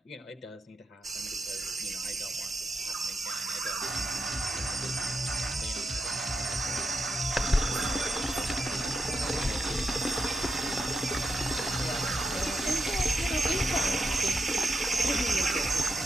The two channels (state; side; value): normal; both; correlation 0.85